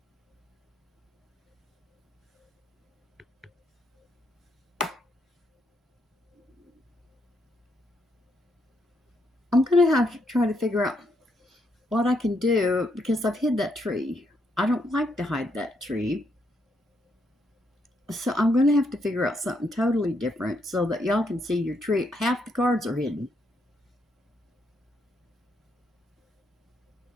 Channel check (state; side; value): normal; both; correlation 0.76